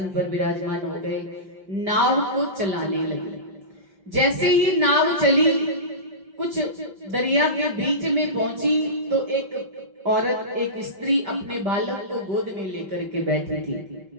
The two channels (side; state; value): left; late; 5.1 ms